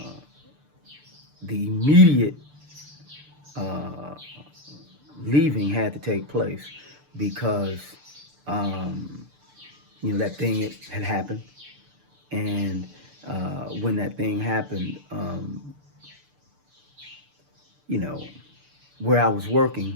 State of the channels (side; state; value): left; late; 6.8 ms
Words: the immediate leaving had to take place because that thing had happened, and when that thing happened, where I was